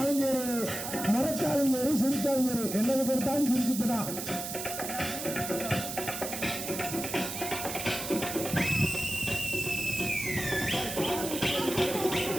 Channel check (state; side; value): noise; right; hiss, 6 dB below the sound